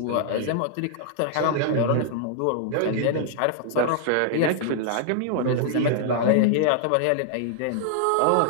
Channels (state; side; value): different; both; correlation -0.01